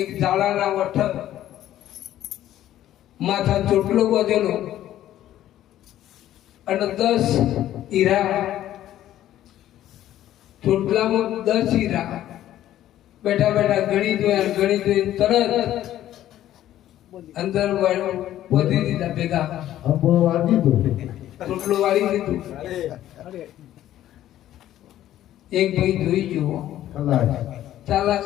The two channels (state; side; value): quieter; right; 12.8 dB